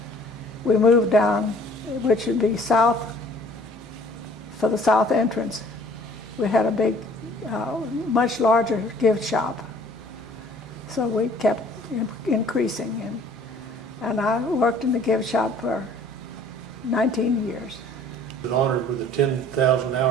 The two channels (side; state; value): both; normal; correlation 0.54